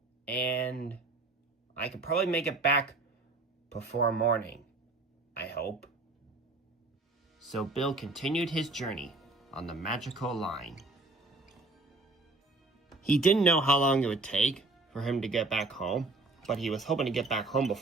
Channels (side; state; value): left; quieter; 3.2 dB